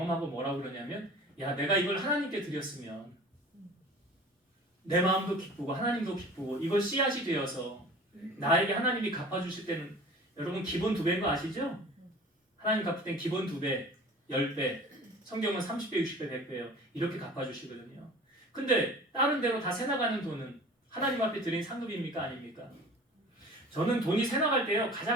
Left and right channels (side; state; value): both; normal; correlation 0.43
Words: 뭐라고 그러냐면 야 내가 이걸 하나님께 드렸으면 내 마음도 기쁘고 하나님도 기쁘고 이걸 씨앗이 되어서 나에게 하나님이 갚아주실 때는 여러분 기본 2배인 거 아시죠? 하나님 갚을 땐 기본 2배, 10배, 성경은 30배, 60배, 100배예요. 이렇게 갚아주시거든요. 근데 다른 데로 다 새나가는 돈은 하나님 앞에 드린 상급입니까? 아닙니까? 저는 돈이 새나갈 때요